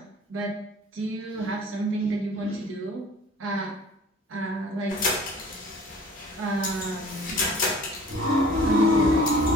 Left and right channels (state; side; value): normal; both; correlation 0.48